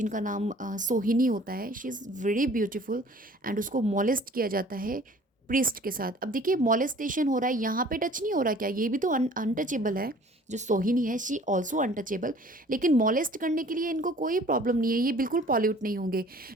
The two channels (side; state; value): both; normal; correlation 0.51